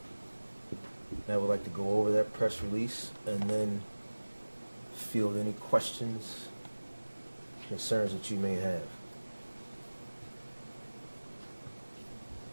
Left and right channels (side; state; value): both; inverted; correlation -1.00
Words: And I would like to go over that press release and then field any questions, concerns that you may have.